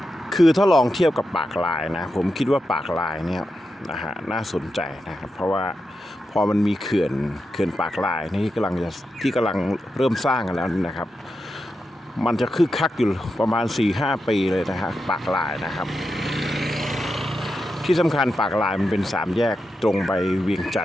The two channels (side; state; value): both; normal; correlation 0.88